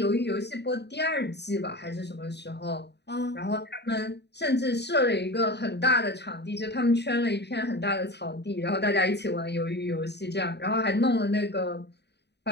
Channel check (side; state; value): right; late; 0.49 ms